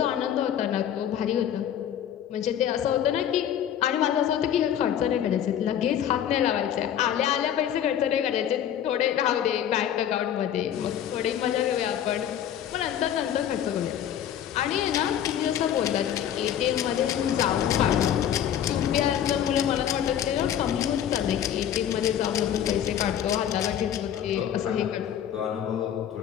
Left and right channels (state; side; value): quieter; right; 10.0 dB